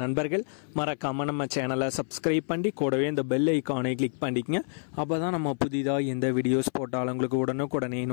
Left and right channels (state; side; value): silent; right; 58 dB below the other